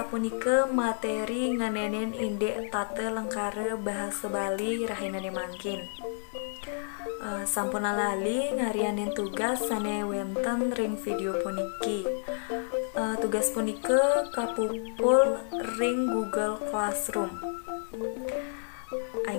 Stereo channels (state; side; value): silent; right; 58 dB below the other